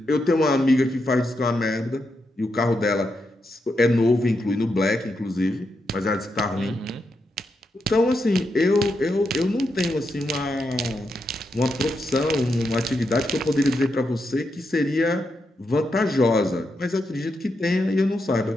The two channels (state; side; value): normal; both; correlation 0.84